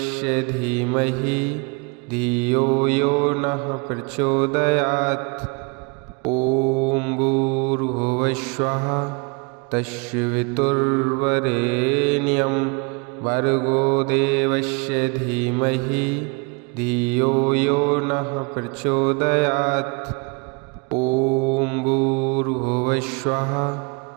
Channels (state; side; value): quieter; left; 31.2 dB